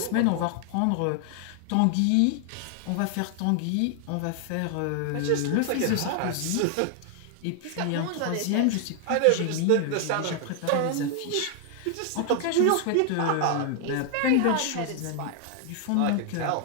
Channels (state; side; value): different; both; correlation 0.00